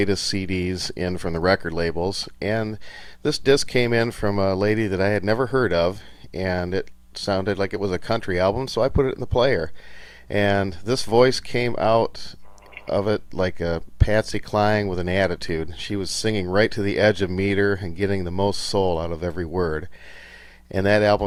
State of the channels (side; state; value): both; identical; correlation 1.00